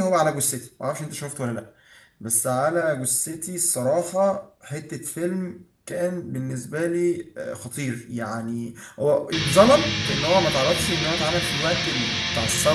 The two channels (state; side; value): identical; both; correlation 1.00